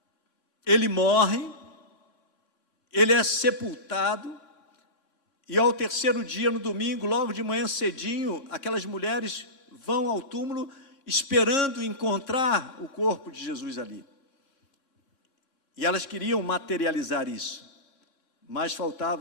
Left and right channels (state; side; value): late; right; 3.6 ms